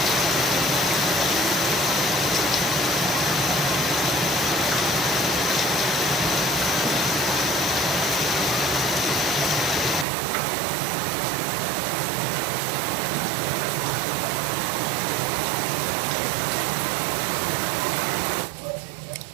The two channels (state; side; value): drops out; left; at 10.1 s